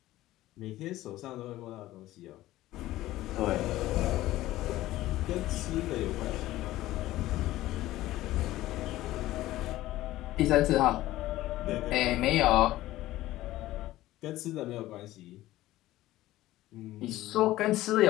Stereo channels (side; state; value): right; quieter; 15.9 dB